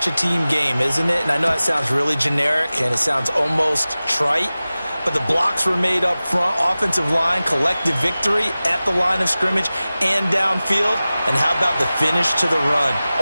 a team game, isn't it? And I know it sounds really generic and it sounds almost trite, but the blocks were made up front, offensive line, collective victory at the line of scrimmage and downfield. And how about the finish to the run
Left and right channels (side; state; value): both; inverted; correlation -0.97